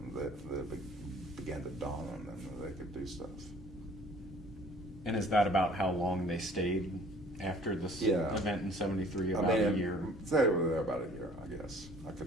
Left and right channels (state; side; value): normal; both; correlation 0.53